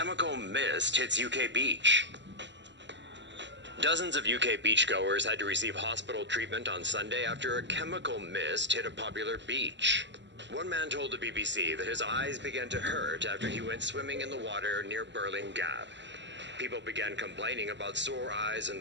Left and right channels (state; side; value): late; left; 0.53 ms